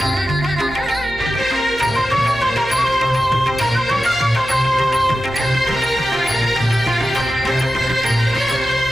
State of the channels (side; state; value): right; noise; hum, 18 dB below the sound